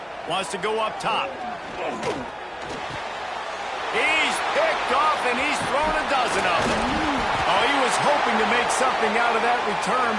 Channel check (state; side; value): identical; both; correlation 1.00